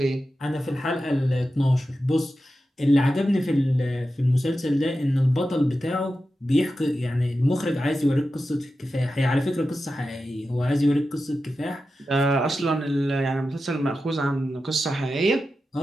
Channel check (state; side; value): normal; both; correlation 0.92